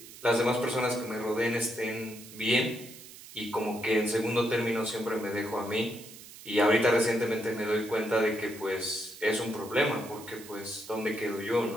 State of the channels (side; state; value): right; noise; hiss, 17 dB below the sound